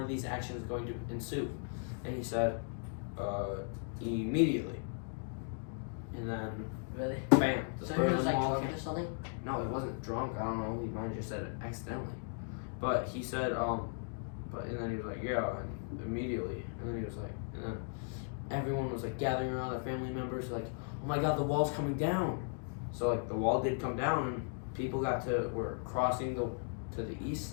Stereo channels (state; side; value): silent; right; 53 dB below the other